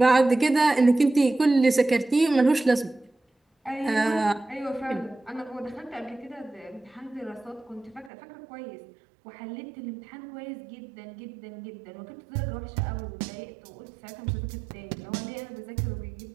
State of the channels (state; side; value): drops out; left; at 8.1 s